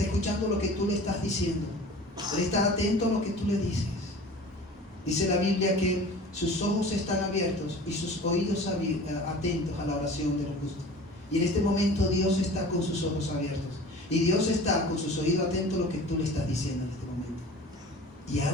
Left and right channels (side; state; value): both; normal; correlation 0.41